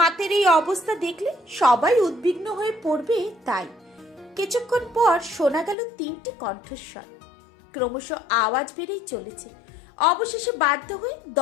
এই অবস্থা দেখলে সবাই উদ্বিগ্ন হয়ে পড়বে, তাই কিছুক্ষণ পর শোনা গেল 3টি কণ্ঠস্বর। ক্রমশ আওয়াজ বেড়েই চলেছে। অবশেষে বাধ্য হয়ে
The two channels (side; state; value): right; drops out; at 5.8 s